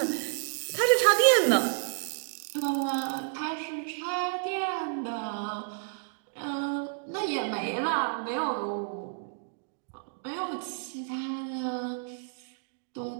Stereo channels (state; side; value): silent; left; digital silence